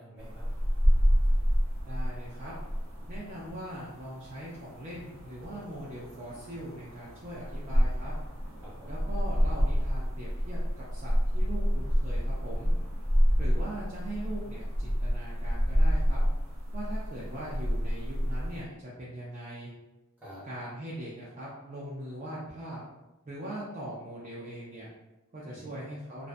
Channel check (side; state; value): both; normal; correlation 0.96